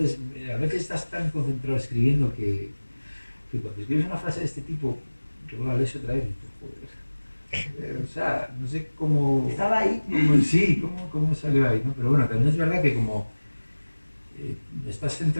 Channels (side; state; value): both; inverted; correlation -1.00